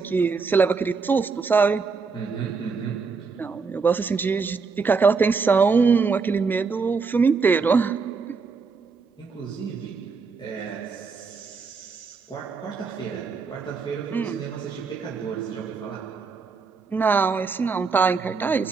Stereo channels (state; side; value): quieter; left; 4.9 dB